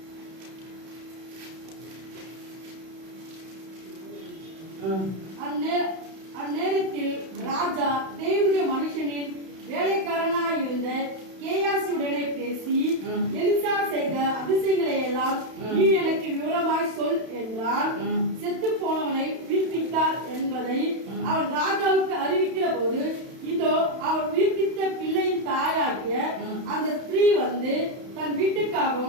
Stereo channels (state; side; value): late; left; 31 ms